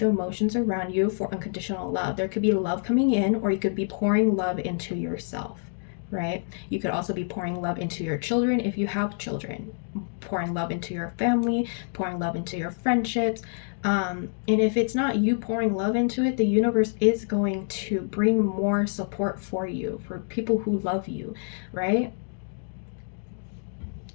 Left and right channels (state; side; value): silent; right; digital silence